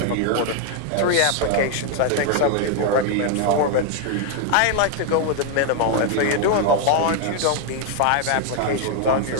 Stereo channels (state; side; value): different; both; correlation 0.00